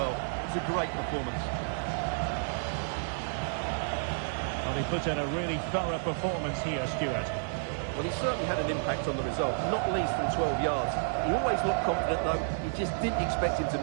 It was a great performance. Well, he put in a really thorough performance here, Stuart. Well, he certainly had an impact on the result, not least from 12 yards. He always looked confident, though. You just didn't expect him to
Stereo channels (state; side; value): silent; left; digital silence